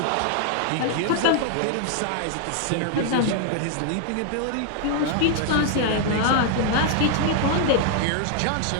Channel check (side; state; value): both; different; correlation 0.00